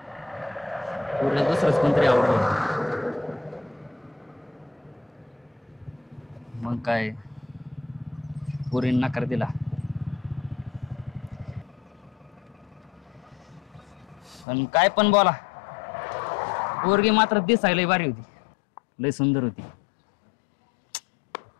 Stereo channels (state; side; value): drops out; right; at 14.5 s